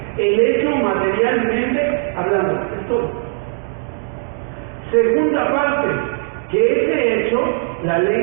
El hecho materialmente hablando, es todo. Segunda parte, que ese hecho, la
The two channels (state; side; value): silent; left; 61 dB below the other